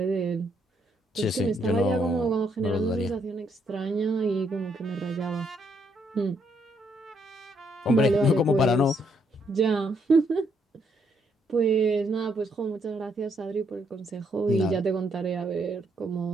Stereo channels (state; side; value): normal; both; correlation 0.73